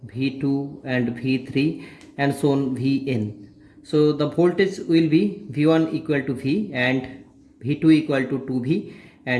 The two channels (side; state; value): both; identical; correlation 1.00